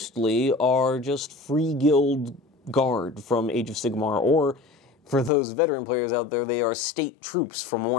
are just free guild guard from Age of Sigmar, or for those veteran players out there, they are state troops from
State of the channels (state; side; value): drops out; right; at 5.3 s